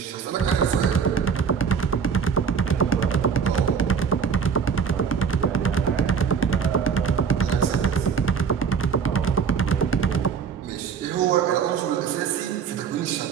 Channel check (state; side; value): quieter; left; 6.4 dB